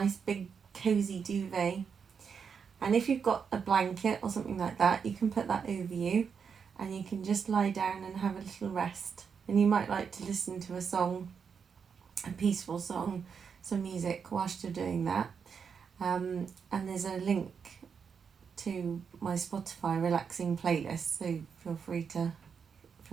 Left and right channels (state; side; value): quieter; left; 6.4 dB